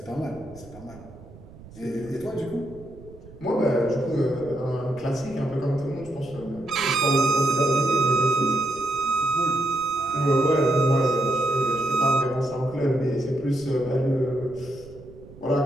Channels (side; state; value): right; noise; rumble, 20 dB below the sound